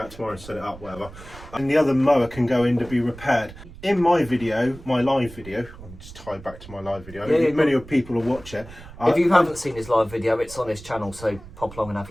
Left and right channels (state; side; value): noise; right; rumble, 17 dB below the sound